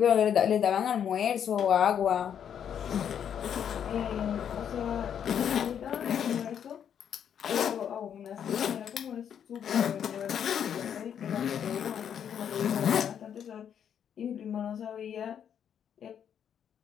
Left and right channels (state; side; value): quieter; right; 8.6 dB